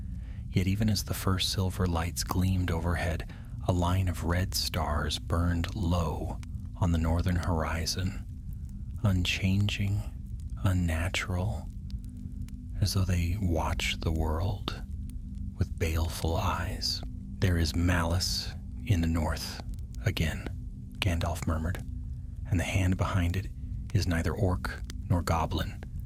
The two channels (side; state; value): both; identical; correlation 1.00